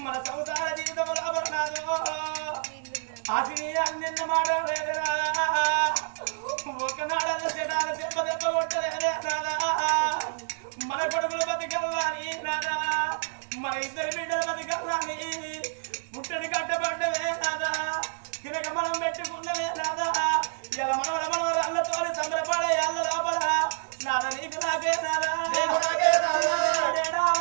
మన సంసార జీవితం రాబడినాదు ఆశని అన్న మాట లేదురా ఒకనాడల్లో చెడాల దెబ్బ దెబ్బ కొట్టలేదే నాదా మన కొడుకులు బతికల్లాని నాదా మన ఇద్దరు బిడ్డలు బతికల్లాని పుట్టడి కట్టబడ్డవే నాదా తినక మనం పెట్టుకున్నవే నాదా ఇలా మనవరల్లతో సంబరపడే అల్ల లోపల నాదా నీకు నాకే నాదా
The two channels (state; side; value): silent; left; digital silence